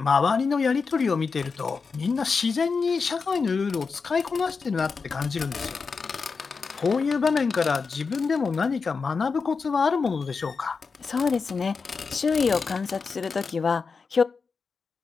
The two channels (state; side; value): quieter; right; 5.0 dB